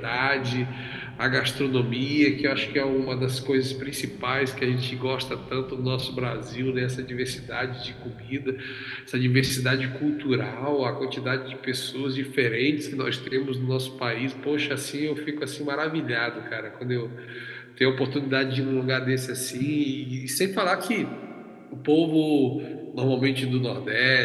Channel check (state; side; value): identical; both; correlation 1.00